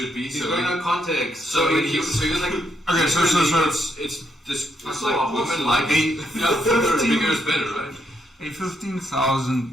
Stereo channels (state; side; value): normal; both; correlation 0.77